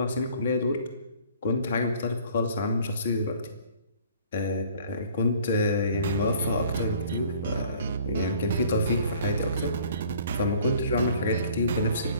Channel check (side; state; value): both; inverted; correlation -0.54